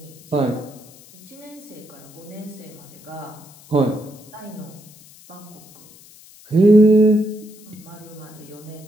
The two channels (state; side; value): noise; left; hiss, 22 dB below the sound